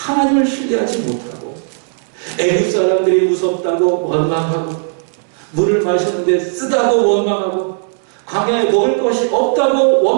신뢰하지 못하고 애굽 사람들이 무섭다고 원망하고, 물을 마셨는데 쓰다고 원망하고, 광야에 먹을 것이 없다고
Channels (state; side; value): silent; left; digital silence